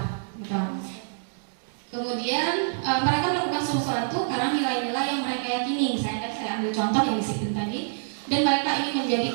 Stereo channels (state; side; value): silent; left; digital silence